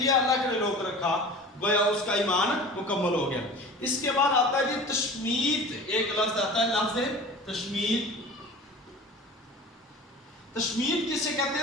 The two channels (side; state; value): both; normal; correlation 0.38